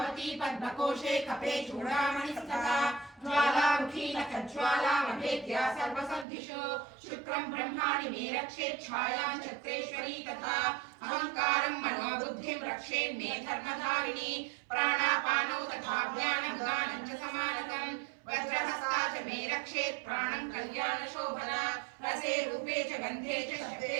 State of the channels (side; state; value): left; drops out; at 6.2 s